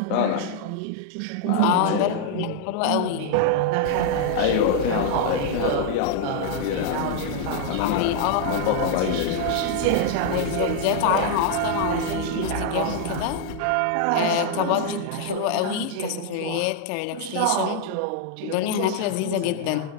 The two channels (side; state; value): both; different; correlation 0.00